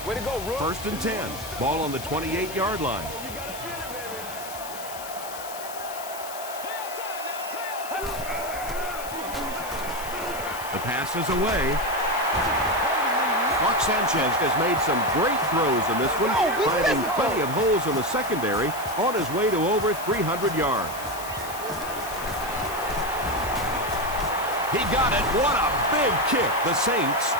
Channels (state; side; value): noise; left; hiss, 12 dB below the sound